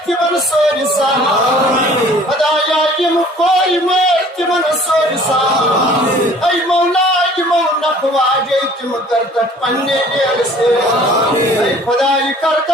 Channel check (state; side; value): normal; both; correlation 0.52